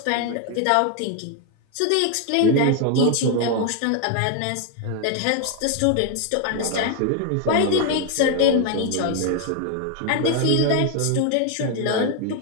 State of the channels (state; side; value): different; both; correlation 0.01